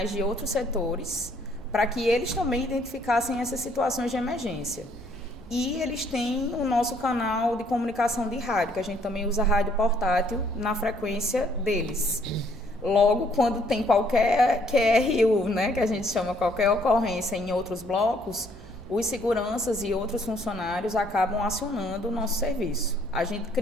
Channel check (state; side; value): normal; both; correlation 0.65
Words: de outros setores para que eles também identificassem essas situações de emergência. E eles têm o nosso canal de comunicação de rádio, que a gente também usa rádio portátil na frequência deles. Logo, quando tem qualquer QRU, né, que a gente chama qualquer ocorrência em outros blocos, os seguranças e outros funcionários acabam acionando o nosso serviço. A gente